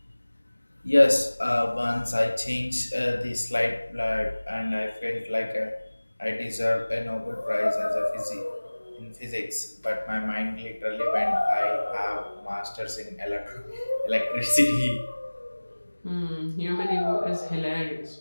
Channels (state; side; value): inverted; both; correlation -1.00